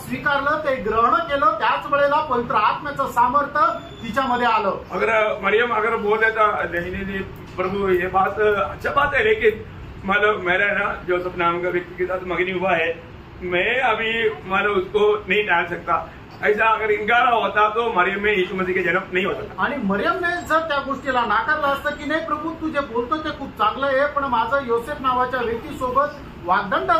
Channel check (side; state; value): both; identical; correlation 1.00